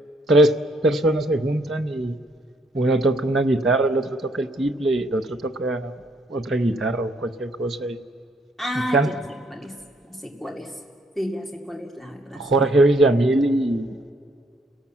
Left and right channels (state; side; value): normal; both; correlation 0.69